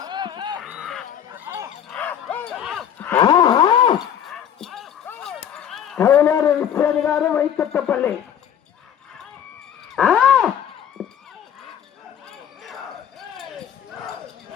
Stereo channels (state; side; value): quieter; right; 9.3 dB